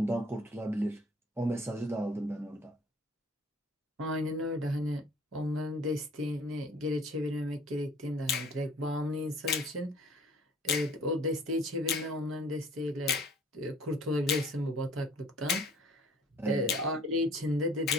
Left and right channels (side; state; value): both; normal; correlation 0.53